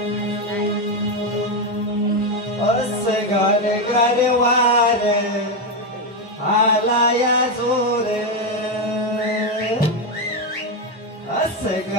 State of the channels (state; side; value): normal; both; correlation 0.08